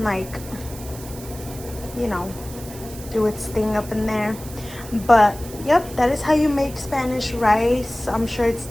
like, you know, do its thing up in there. But yep, that is how you make Spanish rice. I'm sure it's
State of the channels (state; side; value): noise; right; hiss, 16 dB below the sound